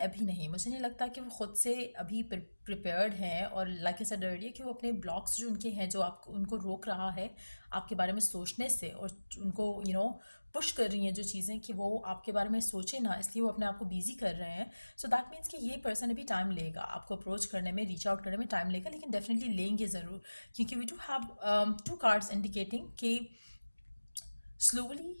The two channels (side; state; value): both; inverted; correlation -1.00